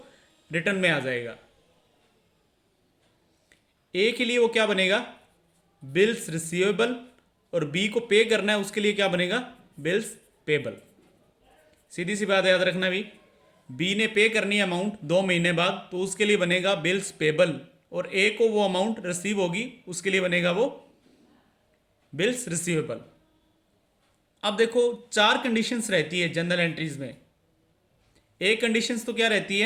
रिटर्न में आ जाएगा। ए के लिए वो क्या बनेगा, बिल्स रिसीवेबल, और बी को पे करना है उसके लिए क्या बनेगा, बिल्स पेबल। सीधी सी बात याद रखना भी, बी ने पे करनी है अमाउंट 2 महीने बाद, तो उसके लिए बनेगा बिल्स पेबल, और ए को वो अमाउंट रिसीव होगी उसके लिए बनेगा वो बिल्स रिसीवेबल। अब देखो, 4 कंडीशंस रहती है जनरल एंट्रीज में। एक कंडीशंस तो क्या रहती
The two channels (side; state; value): both; identical; correlation 1.00